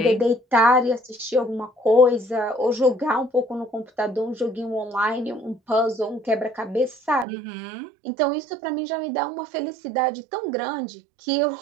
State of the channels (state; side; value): drops out; left; at 7.2 s